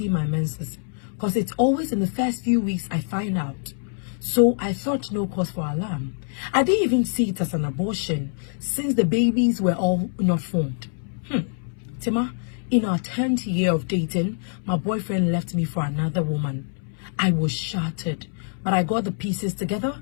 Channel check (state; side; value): silent; right; 62 dB below the other